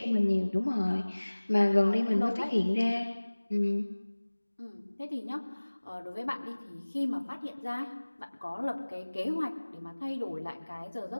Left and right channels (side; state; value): both; inverted; correlation -1.00